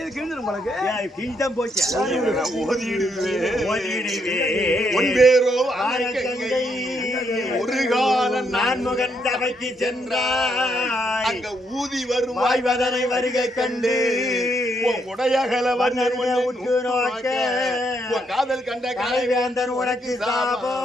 கிழிஞ்சிரும் உங்களுக்கு கிழிதான் போச்சு ஓதிடுவே ஒன்பேரோ வான கங்கை ஒரு காலம் நான் முகன் சபைக்கு சென்றாய் அங்க ஊதி வரும் வாய்வதனை வருகை கண்டு உடையகல வண்ணன் உற்று நோக்க காதல் கண்ட கலைவேந்தன் உனக்கு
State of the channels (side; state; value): both; normal; correlation 0.75